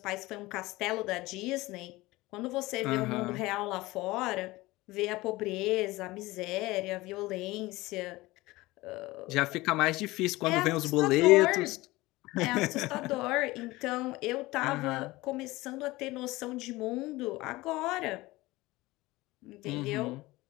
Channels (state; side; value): quieter; right; 20.0 dB